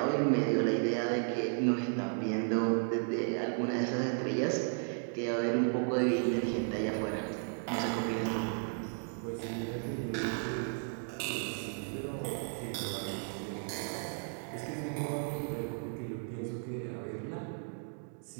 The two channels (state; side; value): silent; left; 55 dB below the other